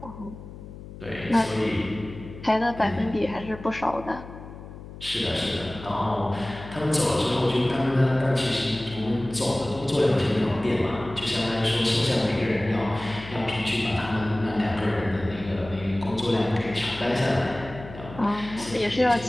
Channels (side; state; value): left; noise; hum, 14 dB below the sound